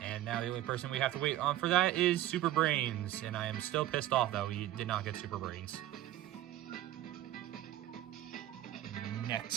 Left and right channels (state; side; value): quieter; left; 13.8 dB